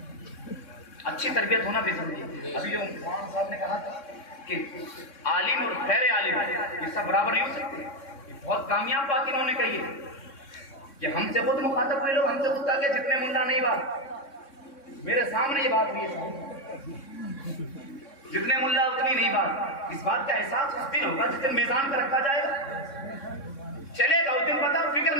اچھی تربیت ہونا بھی ضروری ہے. ابھی جو مولانا صاحب نے کہا تھا کہ عالم اور غیر عالم یہ سب برابر نہیں ہو سکتے, یہ بہت کامیاب بات انہوں نے کہی ہے. کہ ہم سے خود مخاطب ہوئے لوگ ہم سے خود کہا کہ جتنے ملا نہیں بات, میرے سامنے یہ بات ہوئی ہے, جتنے ملا اتنی نہیں بات. اس بات کا احساس اس دن ہوگا جس دن میزان پر رکھا جائے گا, چلے گا اس دن پتا. فکر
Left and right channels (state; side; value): late; right; 3.6 ms